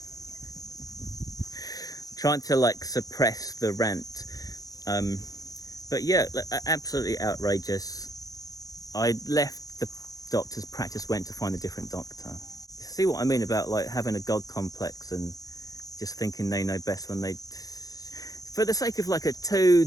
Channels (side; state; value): right; late; 0.17 ms